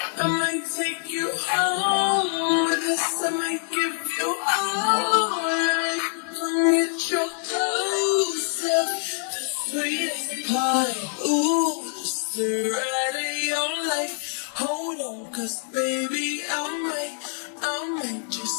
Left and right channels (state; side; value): silent; right; 62 dB below the other